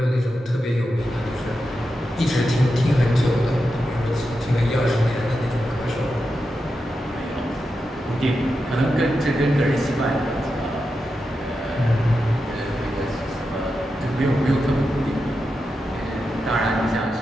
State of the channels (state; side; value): normal; both; correlation 0.89